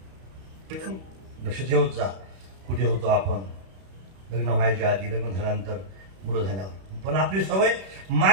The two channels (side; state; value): left; late; 31 ms